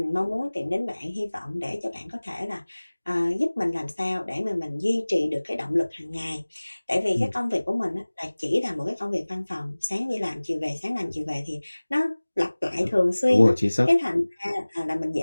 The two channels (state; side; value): inverted; both; correlation -1.00